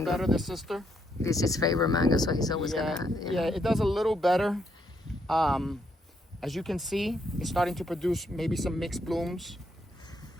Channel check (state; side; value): normal; both; correlation 0.75